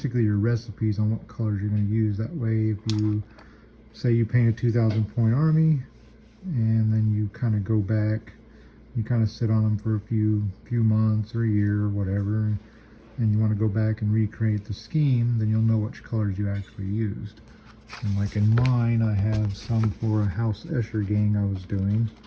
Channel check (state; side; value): identical; both; correlation 1.00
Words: your recipes on what colors you're going to use. That way, if you say you paint a 2,000 point army, and then you kind of go back, you kind of sit on them for a few months or a year or whatever, and you want to go back and recreate the scheme, then you'll know which colors you actually used. And like in mine, I have some for a House Escher gang I was doing.